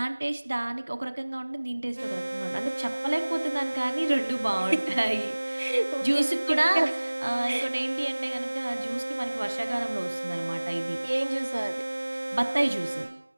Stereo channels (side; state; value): both; inverted; correlation -1.00